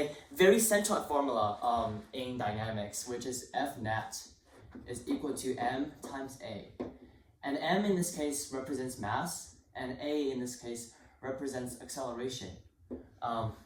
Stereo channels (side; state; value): both; identical; correlation 1.00